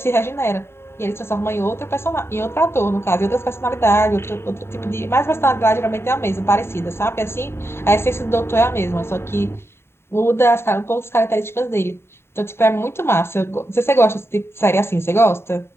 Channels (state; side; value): late; right; 0.12 ms